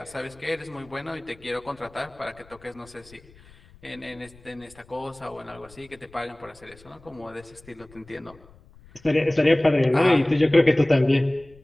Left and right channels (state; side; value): noise; left; rumble, 25 dB below the sound